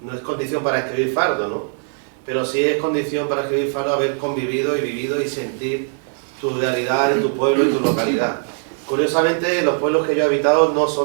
condición para escribir Fardo, ¿no? Pero sí es condición para escribir Fardo haber convivido y vivido y sentir tu realidad en tu pueblo y tu localidad. Curiosamente, los pueblos que yo he habitado no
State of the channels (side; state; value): left; silent; 64 dB below the other